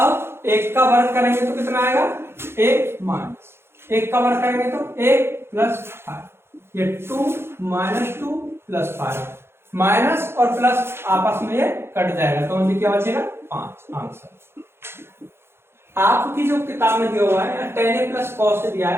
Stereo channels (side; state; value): left; late; 0.12 ms